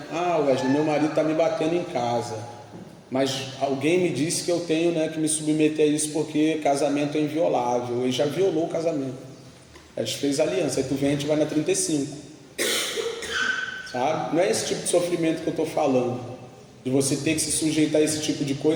Wesley, meu marido está me batendo em casa, mas alguém me disse que eu tenho, né, que me submeter a isso porque casamento é inviolável. Ele já violou o casamento, a gente fez aliança, aí tu vem, a gente vai na 35, sabe? Não é esse tipo de sofrimento que eu estou falando, de você ter que se sujeitar a esse tipo de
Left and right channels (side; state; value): both; identical; correlation 1.00